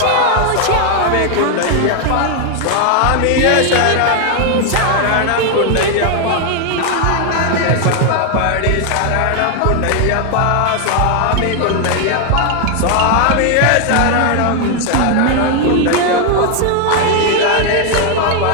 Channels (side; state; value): both; different; correlation 0.00